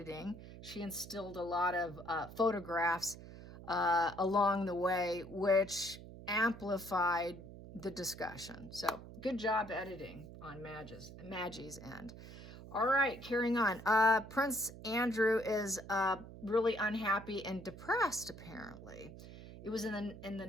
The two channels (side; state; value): right; noise; hum, 14 dB below the sound